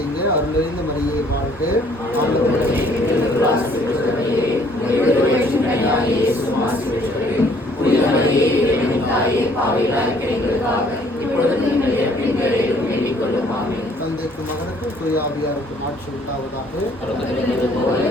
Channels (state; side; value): normal; both; correlation 0.61